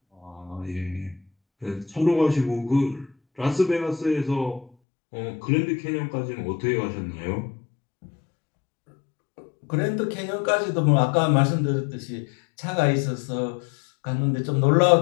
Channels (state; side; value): drops out; right; at 4.7 s